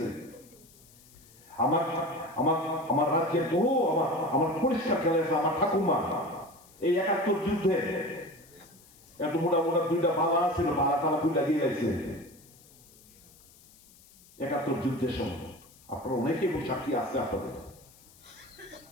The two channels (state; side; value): noise; left; hiss, 25 dB below the sound